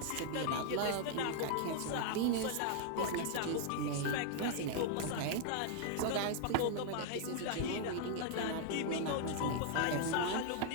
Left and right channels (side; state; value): both; different; correlation 0.00